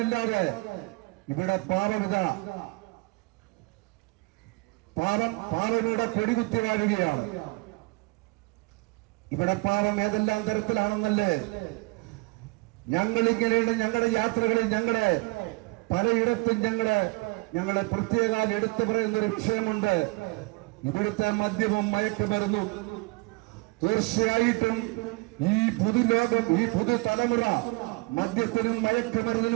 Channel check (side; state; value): left; quieter; 26.1 dB